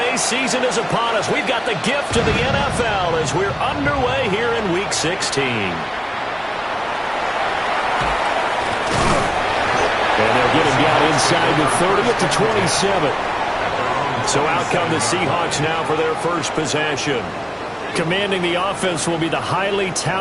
season is upon us. We've got the gift of the NFL as we're underway here in Week 16. And they'll get him down inside the 30 at the 27. So out come the Seahawks now for their first possession. Commanding the offense will be the highly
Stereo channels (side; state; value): both; identical; correlation 1.00